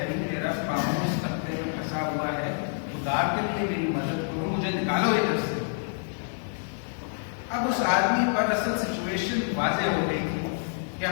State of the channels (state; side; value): silent; right; digital silence